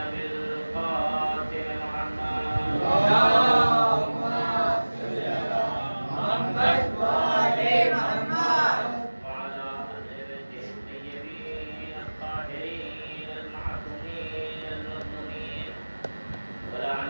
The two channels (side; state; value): both; inverted; correlation -1.00